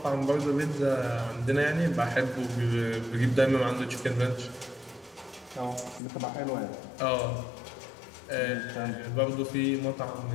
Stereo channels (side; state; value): right; drops out; at 6.0 s